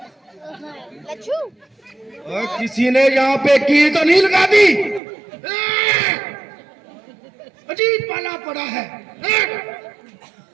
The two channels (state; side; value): drops out; left; at 5.0 s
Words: और किसी ने यहाँ पे की तो नहीं लगा दी। अजीब पाला पड़ा है।